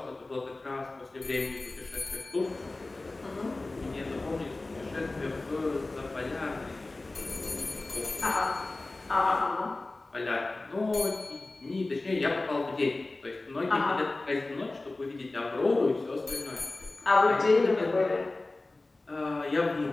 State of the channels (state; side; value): quieter; right; 3.1 dB